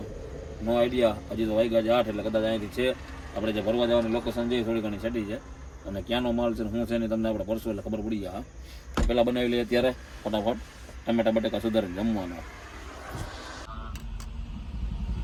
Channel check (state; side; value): identical; both; correlation 1.00